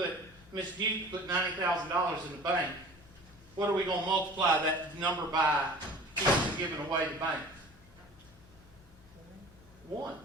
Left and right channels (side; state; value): both; normal; correlation 0.44